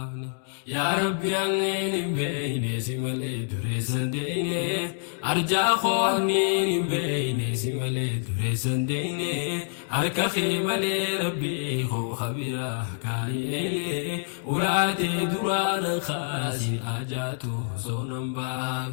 يا ربي أنين بين سمال دريسان ديني أرجع خو أنين بين سمال دريسان ديني أركا خيمال ربي خبيرا كايلي ولاتي دران خاسين آجاتو صونم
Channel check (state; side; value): silent; right; digital silence